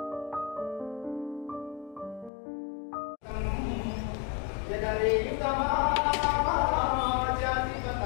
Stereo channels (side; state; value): right; drops out; at 2.3 s